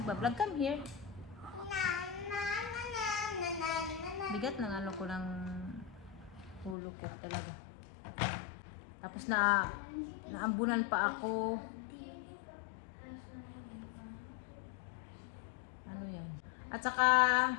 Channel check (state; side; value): drops out; right; at 6.8 s